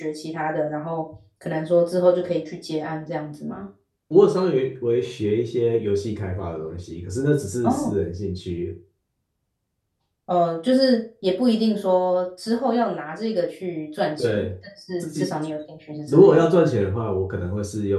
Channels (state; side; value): identical; both; correlation 1.00